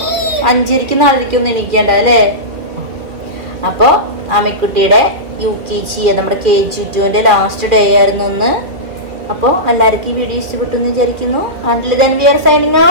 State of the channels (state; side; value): late; left; 2.2 ms